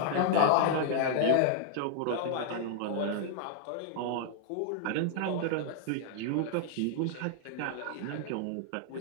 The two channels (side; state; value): both; different; correlation 0.00